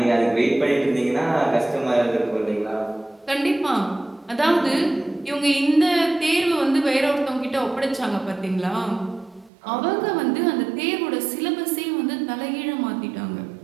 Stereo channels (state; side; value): drops out; left; at 9.5 s